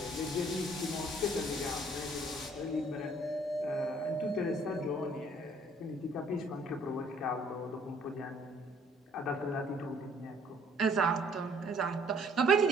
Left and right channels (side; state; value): both; normal; correlation 0.60